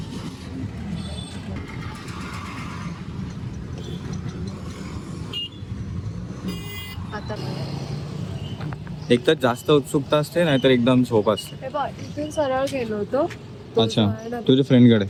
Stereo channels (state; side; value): identical; both; correlation 1.00